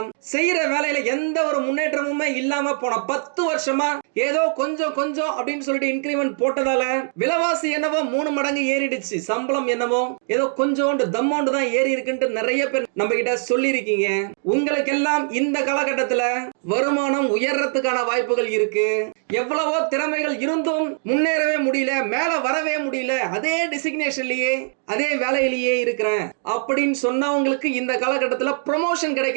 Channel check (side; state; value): left; silent; 60 dB below the other